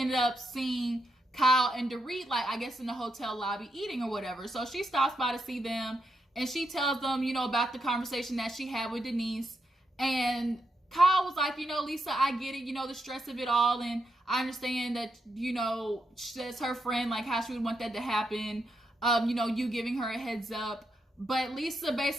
up seeing Kyle and Dorit, like, I guess in the hotel lobby eating or whatever. So she stops by to see them, and she tells them, about the conversation that she had with Denise. And Kyle was like, Lisa, I get it, the stress of it all. And I understand that, that's her friend, like how she would want that to happen. You giving her a heads up. But Lisa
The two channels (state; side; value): normal; both; correlation 0.83